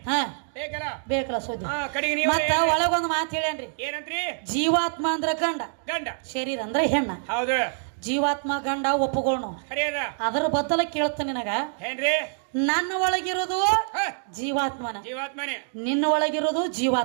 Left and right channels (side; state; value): left; silent; digital silence